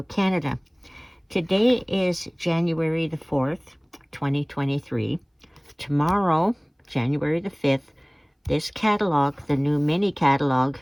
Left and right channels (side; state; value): both; identical; correlation 1.00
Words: Canada. Today is January the 4th, 2023. Tomorrow, January the 5th, this catalog, the new mini catalog,